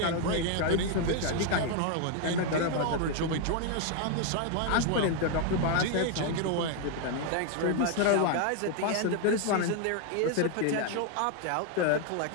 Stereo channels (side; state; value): both; different; correlation 0.00